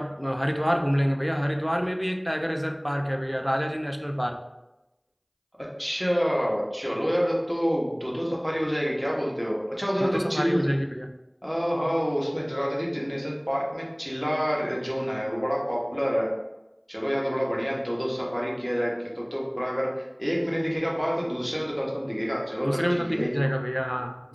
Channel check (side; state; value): both; identical; correlation 1.00